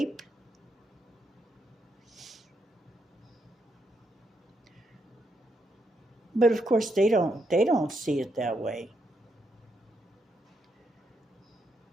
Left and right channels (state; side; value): normal; both; correlation 0.80